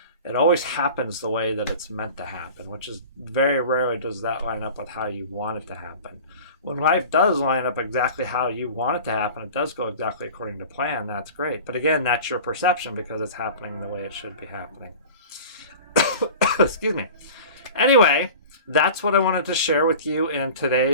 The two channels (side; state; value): both; inverted; correlation -0.39